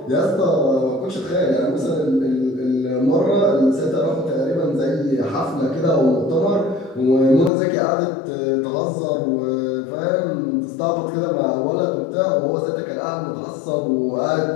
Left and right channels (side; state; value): right; drops out; at 7.5 s